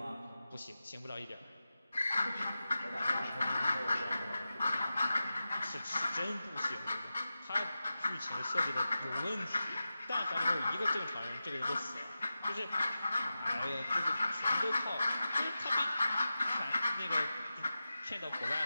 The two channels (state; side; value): inverted; both; correlation -0.93